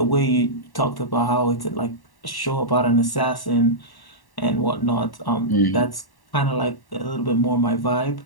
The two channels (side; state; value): right; late; 1.1 ms